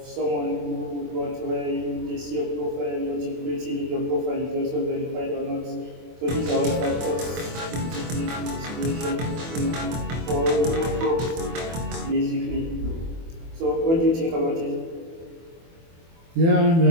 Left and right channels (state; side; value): late; left; 24 ms